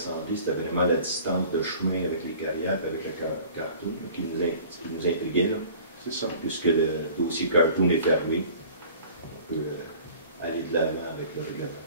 c'était vraiment la distance de chemin avec les carrières, avec le cartoon, qui nous intriguait. C'est ça. Puisque le dossier cartoon est fermé, on peut aller de l'avant avec le règlement.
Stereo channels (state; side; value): inverted; both; correlation -0.47